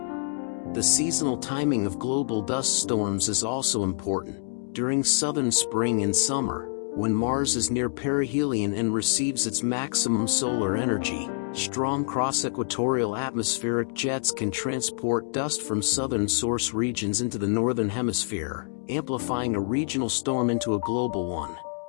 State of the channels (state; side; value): silent; right; digital silence